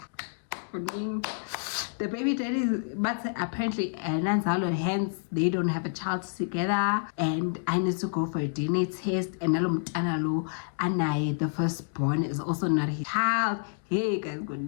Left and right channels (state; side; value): silent; right; digital silence